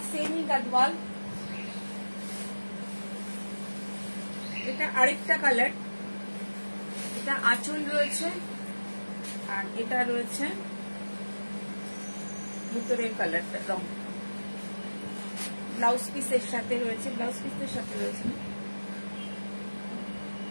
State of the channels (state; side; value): inverted; both; correlation -1.00